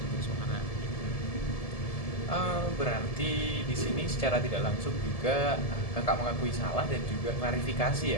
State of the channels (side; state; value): right; late; 1.7 ms